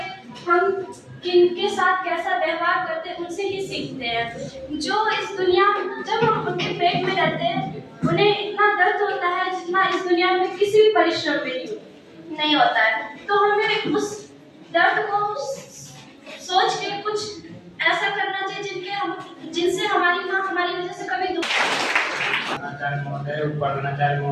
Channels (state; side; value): identical; both; correlation 1.00